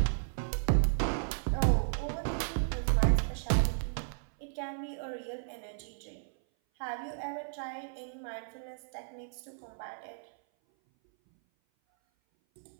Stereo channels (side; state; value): left; silent; 55 dB below the other